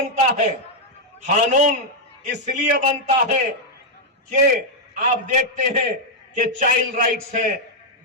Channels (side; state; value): both; normal; correlation -0.02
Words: ہے؟ قانون اس لیے بنتا ہے کہ آپ دیکھتے ہیں کہ چائلڈ رائٹس ہیں،